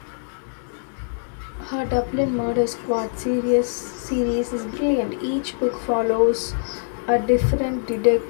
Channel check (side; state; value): right; silent; digital silence